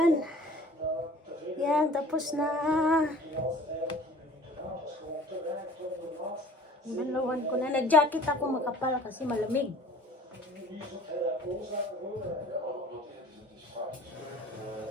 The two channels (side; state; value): both; normal; correlation 0.48